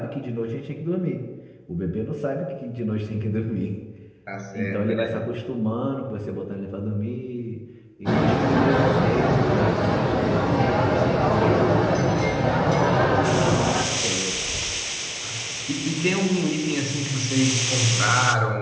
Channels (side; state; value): both; identical; correlation 1.00